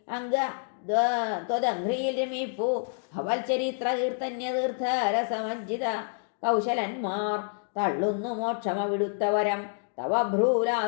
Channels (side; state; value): right; silent; digital silence